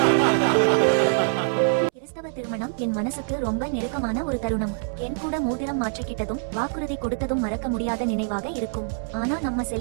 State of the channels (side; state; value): left; silent; 62 dB below the other